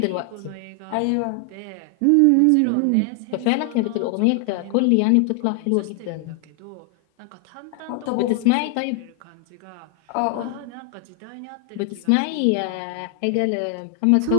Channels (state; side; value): different; both; correlation 0.00